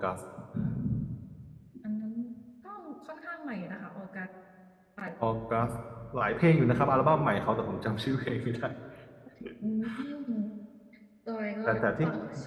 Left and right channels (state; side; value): identical; both; correlation 1.00